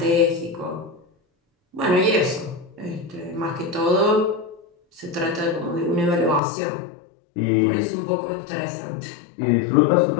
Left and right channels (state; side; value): drops out; right; at 6.4 s